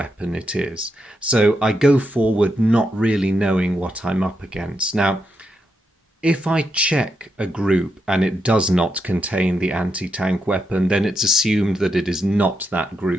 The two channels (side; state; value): both; normal; correlation 0.83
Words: it is. So I go forward not really knowing what I'm up against. Now, if I check a group and it does not contain the anti-tank weapon, then it's assumed that it is not that